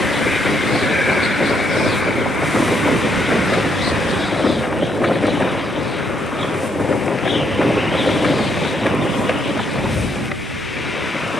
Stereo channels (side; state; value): both; normal; correlation 0.74